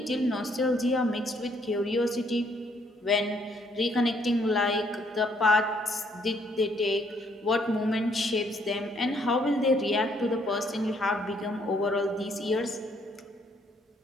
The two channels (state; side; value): normal; both; correlation 0.68